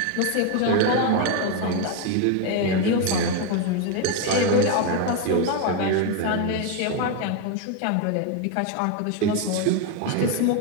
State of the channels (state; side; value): different; both; correlation 0.02